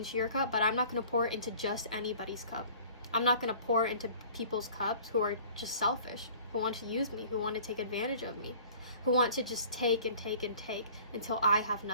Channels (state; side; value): inverted; both; correlation -0.48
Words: your cup, but I'm not going to pour it into just anybody's cup. I'm not going to pour into people's cups who are just selfish, who want to use me, who want to take advantage of me, who want to just take and take and take until I have